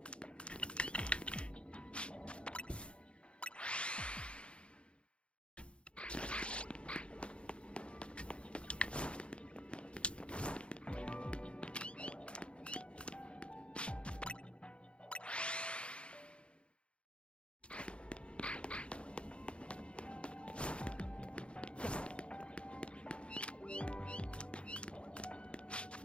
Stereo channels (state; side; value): late; right; 0.058 ms